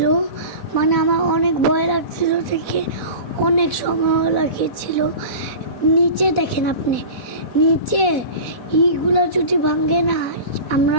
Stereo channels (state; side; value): late; right; 4.1 ms